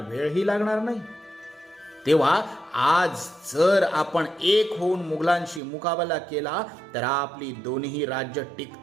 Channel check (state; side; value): drops out; left; at 5.6 s